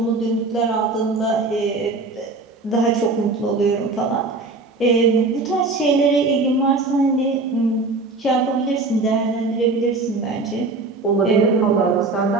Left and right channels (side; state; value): left; quieter; 3.5 dB